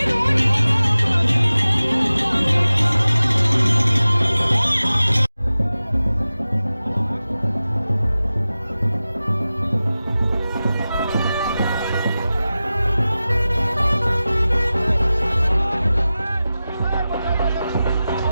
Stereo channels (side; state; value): both; inverted; correlation -0.95